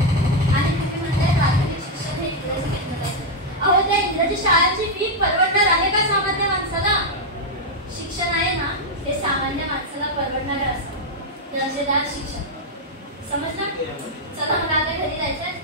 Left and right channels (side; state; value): both; normal; correlation 0.00